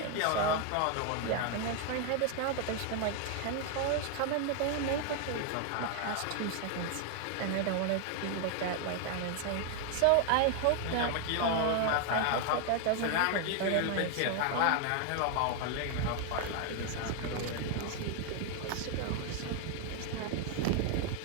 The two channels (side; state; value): both; different; correlation 0.00